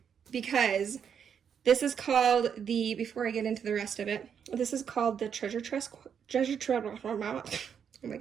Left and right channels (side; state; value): left; quieter; 7.6 dB